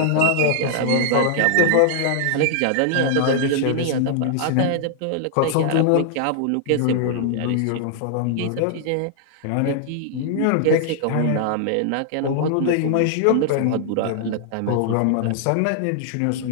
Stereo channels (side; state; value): both; different; correlation -0.01